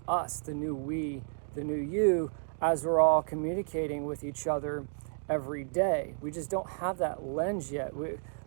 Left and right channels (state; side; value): silent; left; digital silence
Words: us, the new we, the new you, as we're all communicating with each other every day? We just don't have that lens yet.